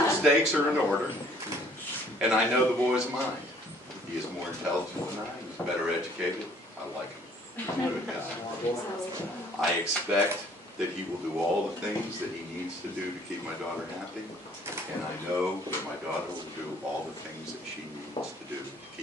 steaks are in order. And I know the boy's mind. He is more intelligent than I am. He's better educated. I like him. He's a good guy. I expect that he will do all the things that he needs to do to keep my daughter happy. And I know that my daughter will do all the things that she needs to do to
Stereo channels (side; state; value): both; normal; correlation 0.58